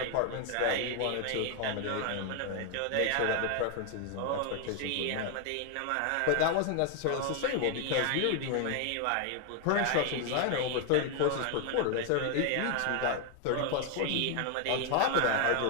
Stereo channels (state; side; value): different; both; correlation 0.00